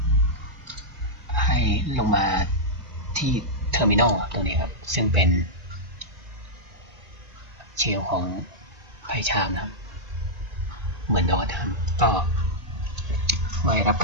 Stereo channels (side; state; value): left; late; 1.9 ms